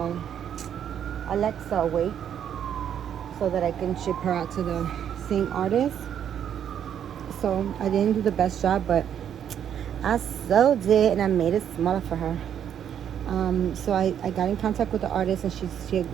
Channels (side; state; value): left; quieter; 9.2 dB